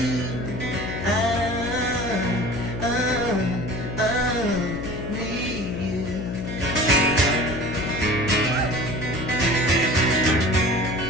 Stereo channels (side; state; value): left; noise; hum, 6 dB below the sound